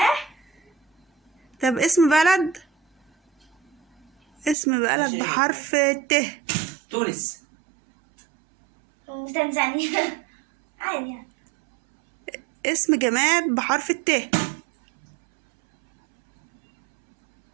طب اسم بلد. اسم بلد بحرف الت. تونس. وتنزانيا. عادي يعني. اسم جماد بحرف الت.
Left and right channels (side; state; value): left; drops out; at 4.5 s